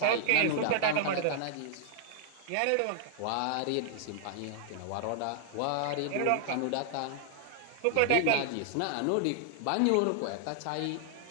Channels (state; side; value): different; both; correlation -0.01